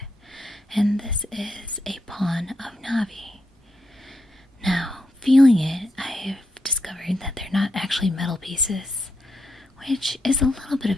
and this is a pawn of Navi. Now, feeling it, I've discovered that they're not actually metal pieces, which is a little bit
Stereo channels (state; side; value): normal; both; correlation 0.82